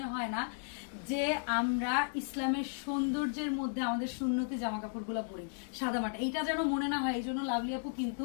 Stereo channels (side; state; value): right; silent; digital silence